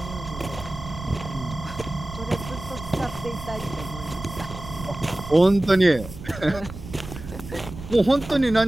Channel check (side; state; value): right; noise; rumble, 12 dB below the sound